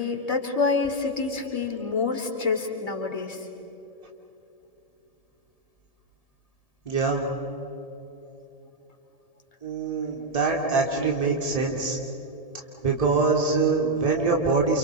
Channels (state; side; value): late; right; 1.7 ms